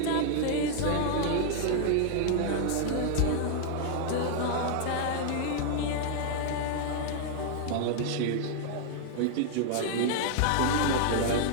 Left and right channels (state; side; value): different; both; correlation 0.00